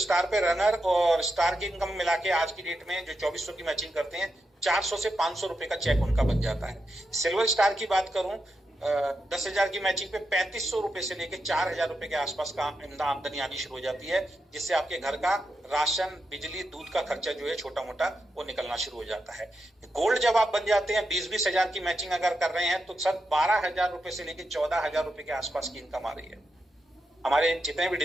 पे रनर और स्टार की इनकम मिला के आज की डेट में जो 2400 की मैचिंग करते हैं 400 से 500 रुपए का चेक उनका बन जाता है। सिल्वर स्टार की बात करूं 10,000 की मैचिंग पे 3500 रुपए से लेके 4,000 रुपए के आसपास का आमदनी आनी शुरू हो जाती है, जिससे आपके घर का राशन, बिजली, दूध का खर्चा जो है छोटा मोटा वो निकलना शुरू हो जाता है। गोल्ड जब आप बन जाते हैं, 20-20 हजार की मैचिंग अगर कर रहे हैं, तो सर 12,000 रुपए से लेके 14,000 रुपए के आसपास की इनकम आ रही है। हमारे जितने भी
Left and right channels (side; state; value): both; normal; correlation 0.86